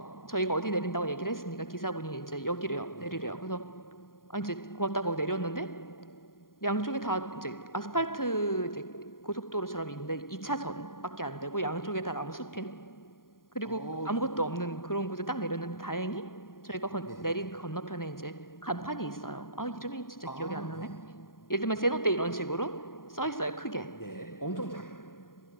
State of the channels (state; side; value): late; right; 0.91 ms